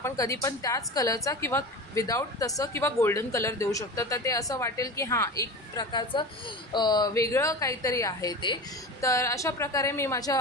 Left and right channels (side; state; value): both; normal; correlation 0.29